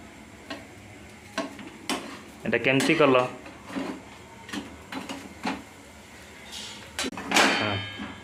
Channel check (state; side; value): identical; both; correlation 1.00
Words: एटा केमती कल